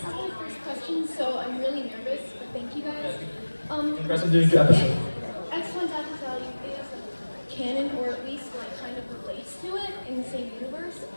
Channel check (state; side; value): inverted; both; correlation -1.00